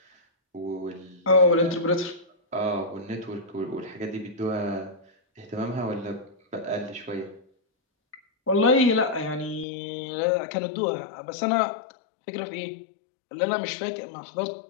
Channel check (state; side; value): drops out; right; at 9.7 s